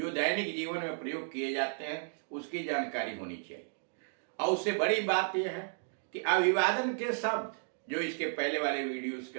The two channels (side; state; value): left; silent; digital silence